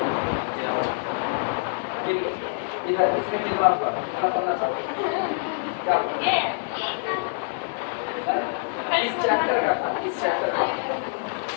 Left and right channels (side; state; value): right; silent; digital silence